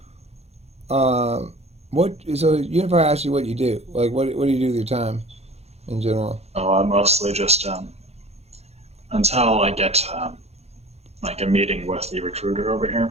What? So Unify asked you what you do. Like, what do you do with your time in general? Oh, I mostly just, until I get, like a meeting with the recruiter over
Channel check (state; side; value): late; left; 0.31 ms